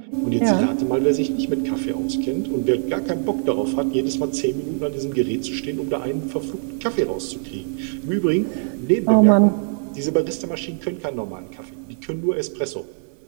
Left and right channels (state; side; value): silent; left; 63 dB below the other